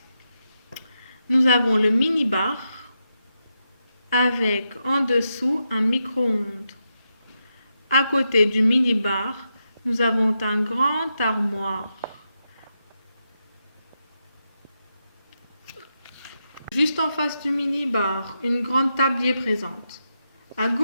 nous avons le mini-bar avec en dessous un micro-ondes. À côté du mini-bar, nous avons un grand armoire. Juste en face du mini-bar, une grande table y est présente. À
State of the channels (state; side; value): inverted; both; correlation -0.85